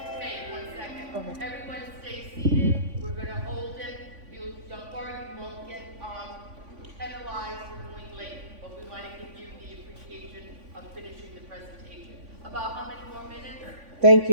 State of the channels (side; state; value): left; late; 3.5 ms